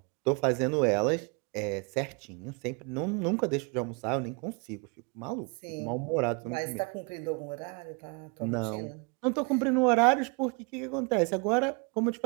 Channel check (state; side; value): quieter; left; 32.6 dB